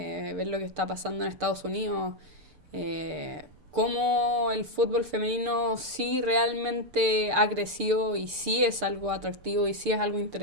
lo que está pasando en Estados Unidos, cómo el fútbol femenino sí realmente ha crecido y sí es algo atractivo y sí es algo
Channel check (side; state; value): left; late; 6.7 ms